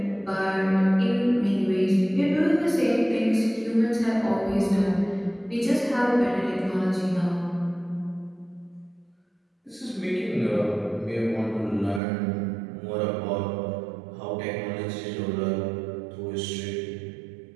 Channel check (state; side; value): drops out; left; at 12.0 s